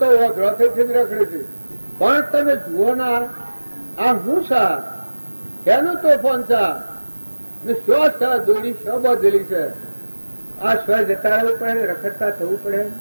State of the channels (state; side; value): inverted; both; correlation -1.00